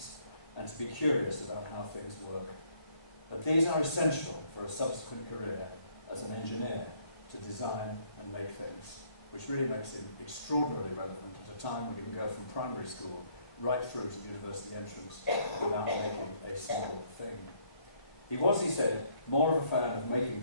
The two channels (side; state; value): right; late; 1.8 ms